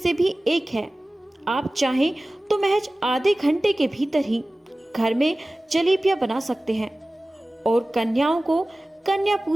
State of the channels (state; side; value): normal; both; correlation 0.97